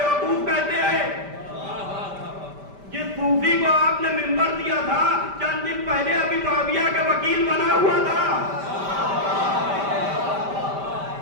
کہتے ہیں۔ جس صوفی کو آپ نے منبر دیا تھا چند دن پہلے ابھی معاویہ کا وکیل بنا ہوا تھا،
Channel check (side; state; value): left; late; 5.1 ms